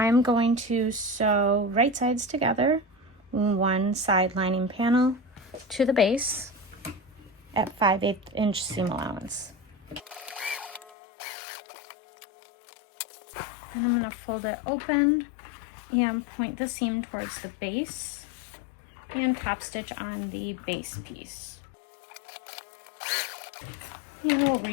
going to sew right sides together, one side lining panel to the base at 5/8 inch seam allowance. Then I'm going to fold it open and point the seam towards the base and top stitch on the base piece. And we'll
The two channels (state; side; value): drops out; right; at 10.9 s